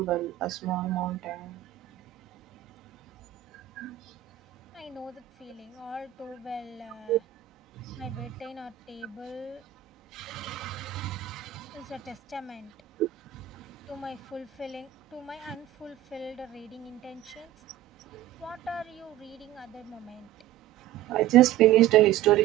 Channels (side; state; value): left; quieter; 13.0 dB